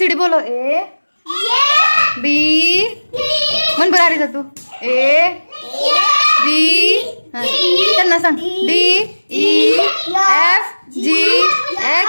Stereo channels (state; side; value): inverted; both; correlation -1.00